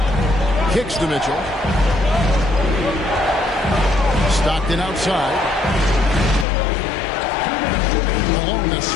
Kicks to Mitchell. Stockton outside. Malone, a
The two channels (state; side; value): drops out; right; at 6.5 s